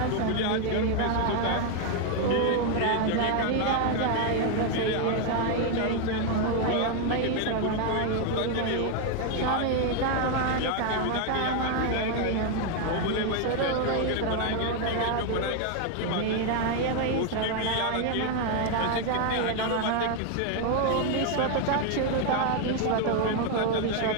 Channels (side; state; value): both; different; correlation 0.01